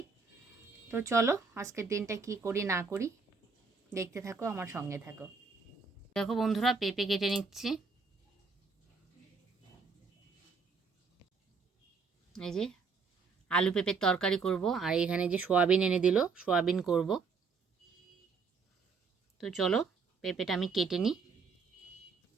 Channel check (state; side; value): quieter; left; 4.9 dB